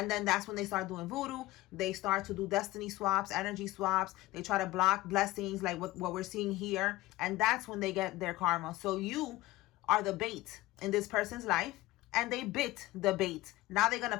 then that's when they start doing voodoo. They start to do destiny swaps, energy swaps. They try to block blessings like what we're seeing here. And that's when they get their karma. So you are the bait in this person's life. And they bit the bait. Now they're going to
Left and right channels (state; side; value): quieter; right; 18.4 dB